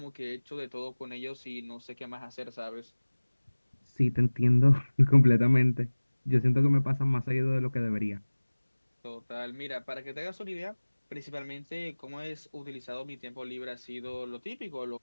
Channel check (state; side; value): inverted; both; correlation -1.00